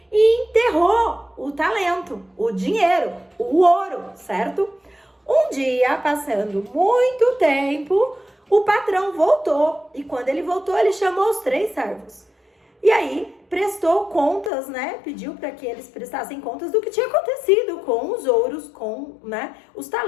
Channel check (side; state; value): right; drops out; at 14.5 s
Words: e enterrou o talento, o dinheiro, o ouro, certo? Um dia, passando muito tempo, o patrão voltou e quando ele voltou, ele chamou os 3 servos. E aí, prestou contas, né? Pediu para que eles prestassem contas do que tinha acontecido com os ouros, com, né, os